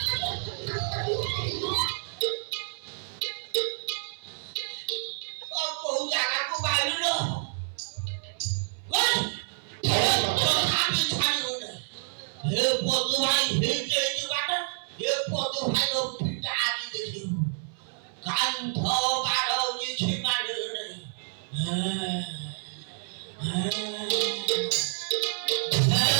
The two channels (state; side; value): silent; left; 59 dB below the other